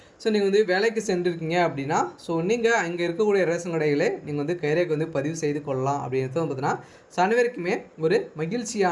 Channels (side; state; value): both; identical; correlation 1.00